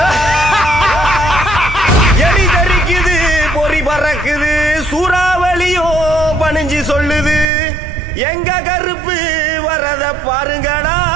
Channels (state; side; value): drops out; left; at 7.5 s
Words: எலி தெரிக்குது, பொறி பறக்குது, சூறாவளியும் பணிஞ்சு சொல்லுது. எங்க கருப்பு வரத பாருங்கடா,